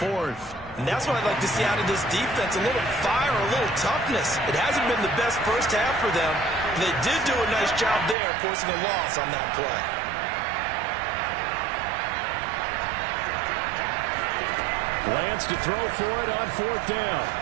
And that's what I'd like to see out of this defense. A little fire, a little toughness. It hasn't been the best first half for them. They did do a nice job there, forcing a loss on that play. Lance to throw for it on 4th down.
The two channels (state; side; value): drops out; left; at 8.2 s